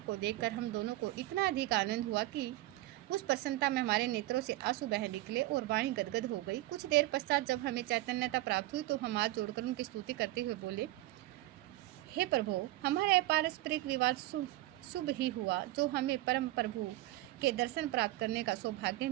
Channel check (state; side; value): quieter; left; 17.4 dB